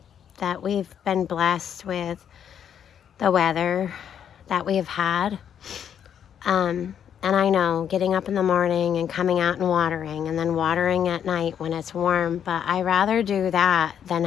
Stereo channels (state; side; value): quieter; right; 8.8 dB